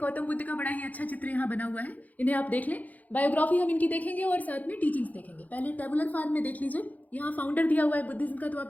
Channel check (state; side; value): late; right; 0.079 ms